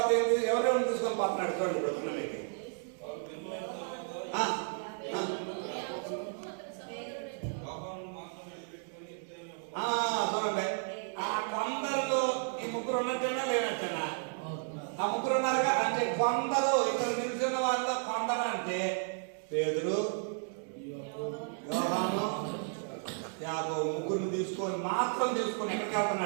ఎవరెవరిని తీసుకొని పోతున్నాడు చూడండి. ఇప్పుడు మీకు చూడండి, ఆ కొందరిలో ఈ 3 ఉన్నట్టేనా లేనట్టేనా? ఆ 3 ఉన్నారుగా. అంటే కొందరు ఇక్కడ నిలిచిన వాళ్ళలో కొందరు అంటే పేతురు, యోహాను, యాకోబు 3 తీసుకొని ఎక్కడికి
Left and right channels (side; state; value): left; silent; 56 dB below the other